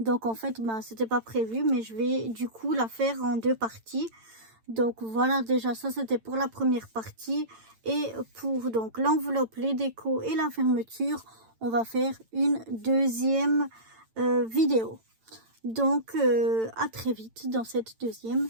en fait c'était pas prévu, mais je vais du coup la faire en deux parties. Donc voilà, déjà ça c'était pour la première partie, et pour donc l'enveloppe, les décos et la fermeture, on va faire une deuxième vidéo. Donc à très vite dans cette deuxième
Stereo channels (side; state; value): left; late; 8.9 ms